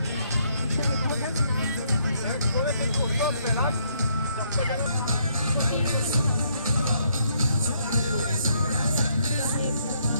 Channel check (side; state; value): both; inverted; correlation -0.71